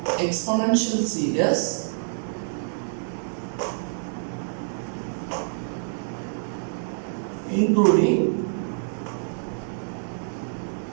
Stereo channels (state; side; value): silent; left; digital silence